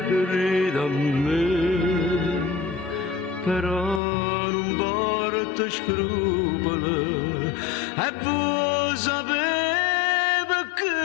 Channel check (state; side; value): drops out; right; at 4.0 s